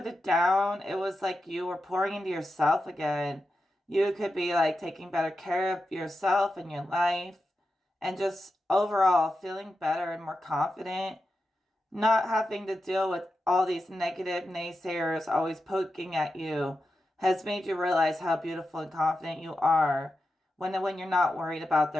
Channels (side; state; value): both; normal; correlation 0.89